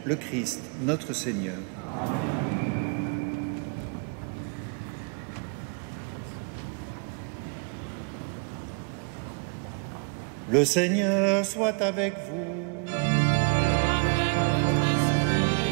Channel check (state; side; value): quieter; left; 37.5 dB